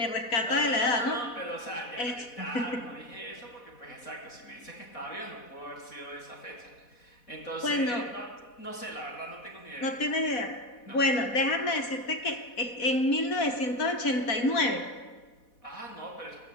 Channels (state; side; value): late; right; 4.1 ms